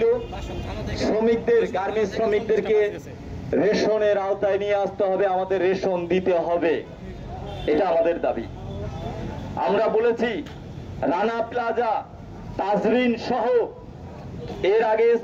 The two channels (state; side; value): identical; both; correlation 1.00